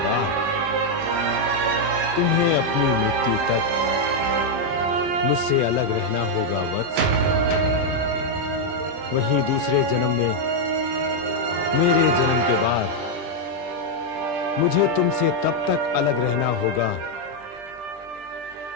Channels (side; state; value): left; late; 20 ms